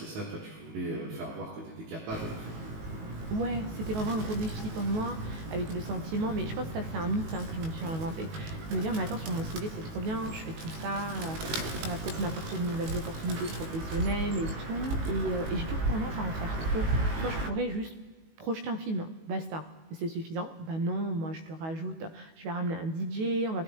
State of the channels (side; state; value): left; late; 19 ms